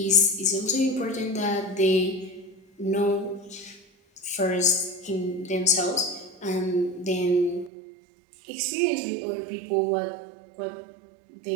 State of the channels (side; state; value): left; drops out; at 7.7 s